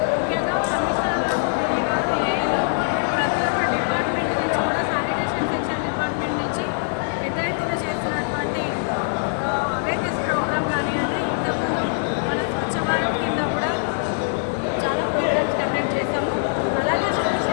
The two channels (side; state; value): right; silent; digital silence